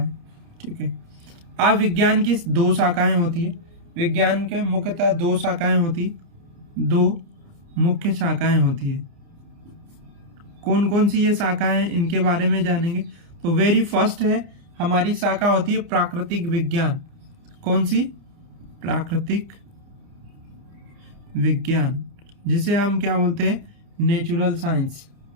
ठीक है। अब विज्ञान की दो शाखाएं होती है। विज्ञान के मुख्यतः दो मुख्य शाखाएं होती है। कौन कौन सी ये शाखाएं हैं, इनके बारे में जानेंगे। तो वेरी फर्स्ट है हमारी शाखा होती है प्राकृतिक विज्ञान। कौन सी? प्राकृतिक विज्ञान, जिसे हम क्या बोलते हैं? नेचुरल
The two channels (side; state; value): left; late; 30 ms